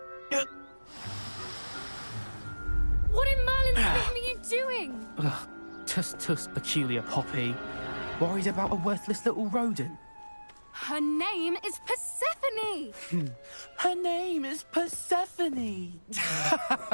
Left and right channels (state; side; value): inverted; both; correlation -1.00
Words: What in Merlin's name are you doing? Tuss, peculiar Poppy. Worried about a worthless little rodent? Her name is Persephone! Her name is Persephone!